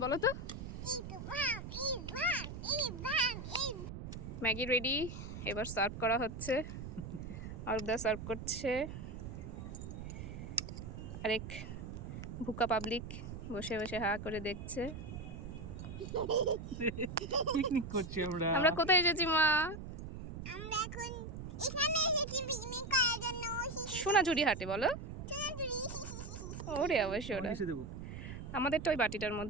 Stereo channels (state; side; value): noise; right; rumble, 8 dB below the sound